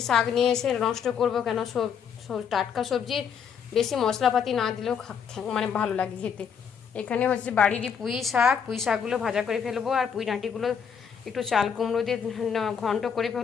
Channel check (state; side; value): quieter; right; 7.2 dB